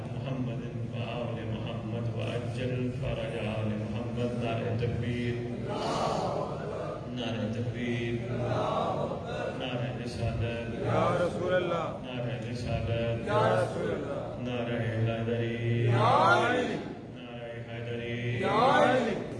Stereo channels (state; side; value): identical; both; correlation 1.00